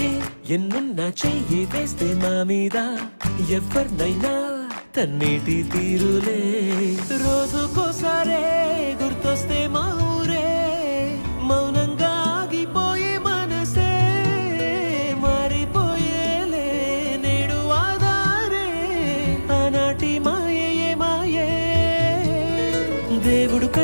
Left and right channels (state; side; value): inverted; both; correlation -1.00